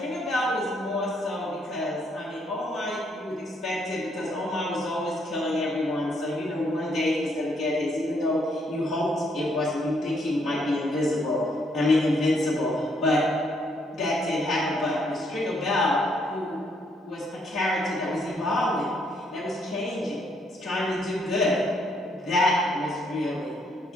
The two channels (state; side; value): normal; both; correlation 0.71